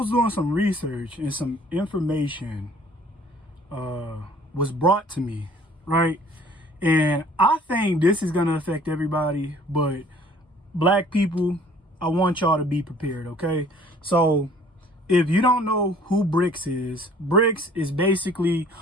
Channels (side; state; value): both; normal; correlation 0.54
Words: doing some research and some information was brought to me, right? And I think this is gonna affect everybody, but black people, I want y'all to be prepared, okay? So, if you don't know who BRICS is basically